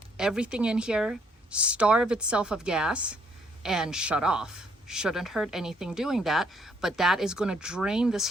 everything in here, starve itself of gas, and shut off. Shouldn't hurt anything doing that, but that is going to drain this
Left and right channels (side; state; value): both; normal; correlation 0.68